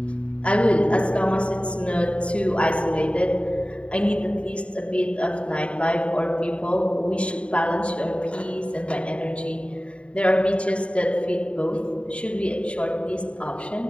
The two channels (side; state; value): right; late; 0.061 ms